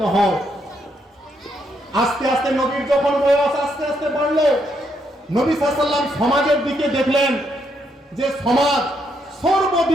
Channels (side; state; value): both; normal; correlation 0.76